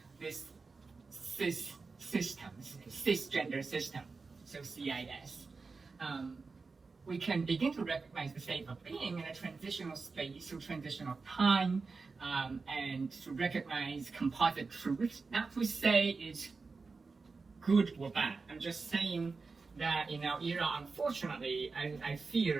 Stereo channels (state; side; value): quieter; left; 4.3 dB